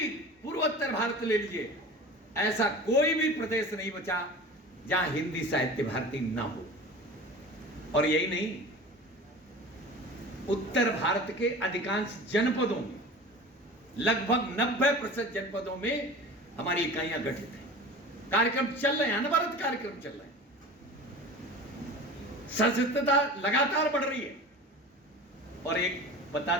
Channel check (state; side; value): normal; both; correlation 0.36